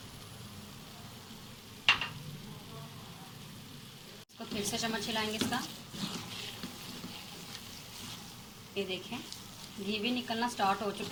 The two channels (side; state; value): both; identical; correlation 1.00